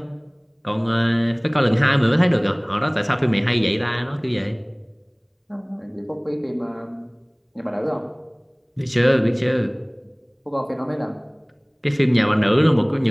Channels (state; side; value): identical; both; correlation 1.00